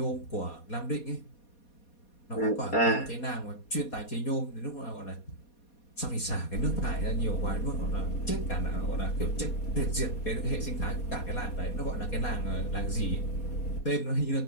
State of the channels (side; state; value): right; late; 4.2 ms